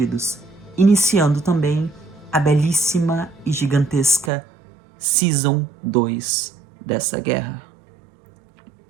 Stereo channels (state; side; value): drops out; left; at 4.3 s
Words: iniciando também a belíssima e gigantesca Season 2 dessa guerra.